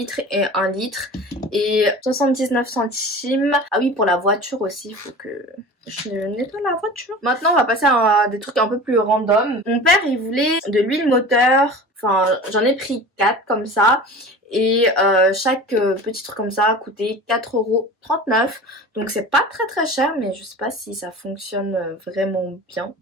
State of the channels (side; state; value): both; normal; correlation 0.36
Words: et 1 litre. Et 79 centimes. Ah oui, pour la voiture aussi, il faut que je nettoie la voiture. Maintenant on va passer à des trucs un peu plus random. Mon père il voulait de l'huile moteur. Enfin j'en ai pris 4 comme ça. Et chaque petit truc comme ça a coûté 4,39 €. Donc c'est pas très cher mais je sais pas si ça fonctionne vraiment bien.